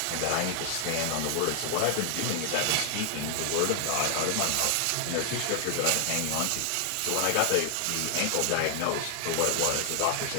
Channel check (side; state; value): both; different; correlation 0.00